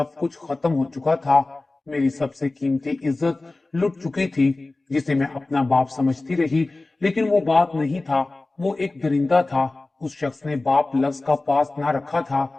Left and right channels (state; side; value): quieter; right; 3.1 dB